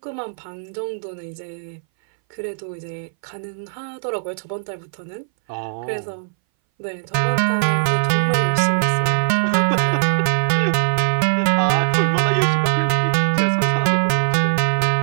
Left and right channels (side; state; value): left; silent; 61 dB below the other